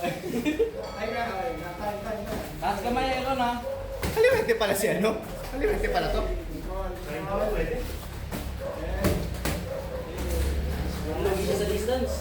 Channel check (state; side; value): identical; both; correlation 1.00